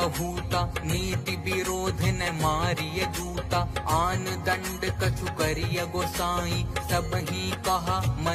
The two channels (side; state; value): both; identical; correlation 1.00